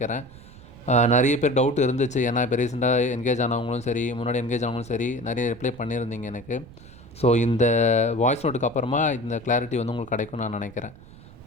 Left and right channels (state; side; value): noise; right; rumble, 20 dB below the sound